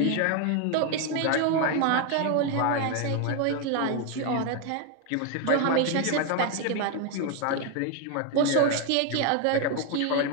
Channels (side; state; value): both; different; correlation 0.01